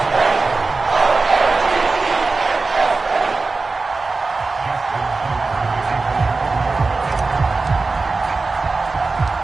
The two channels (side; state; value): left; quieter; 3.8 dB